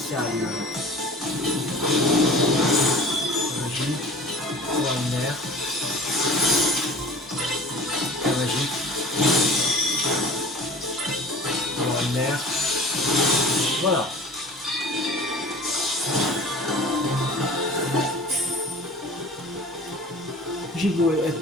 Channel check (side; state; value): both; normal; correlation 0.41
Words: Magique. Extraordinaire. Très magique. Extraordinaire. Voilà. J'ai beau